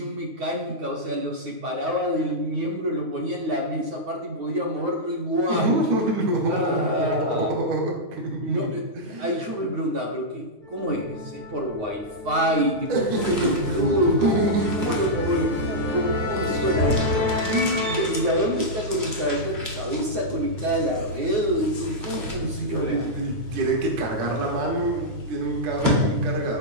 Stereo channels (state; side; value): late; left; 9.5 ms